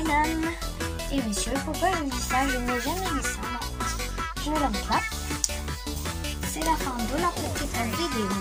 et messieurs. Pourquoi je dis ça? Je n'ai jamais dit ça, non. Je ne l'aime pas. C'est la fin de la petite vidéo.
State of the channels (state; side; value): identical; both; correlation 1.00